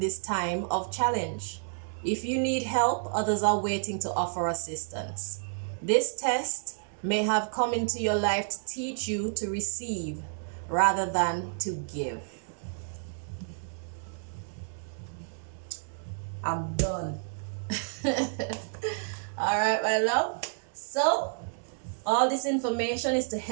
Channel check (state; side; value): silent; left; 58 dB below the other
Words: time of challenge. If you need help, others are waiting to offer assistance. This test may have come into your life to teach you to receive rather than to give. I'm done. All right, my love. So, all this information is to